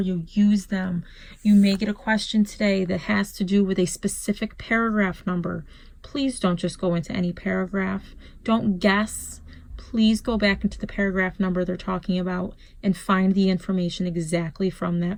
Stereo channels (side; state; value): both; identical; correlation 1.00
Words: you. Use them. You may get a question today that has to do with a specific paragraph number. Please don't just go into any paragraph. Don't guess. Please go back into the paragraph number they're talking about and find the information exactly from